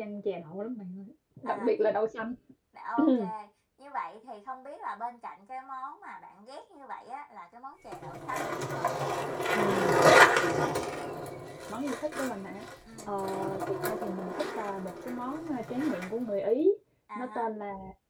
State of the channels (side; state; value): both; identical; correlation 1.00